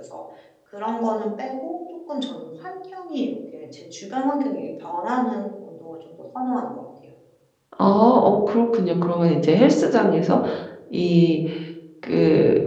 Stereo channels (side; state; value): both; identical; correlation 1.00